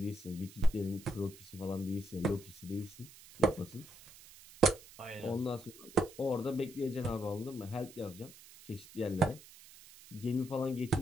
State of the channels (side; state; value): right; noise; hiss, 20 dB below the sound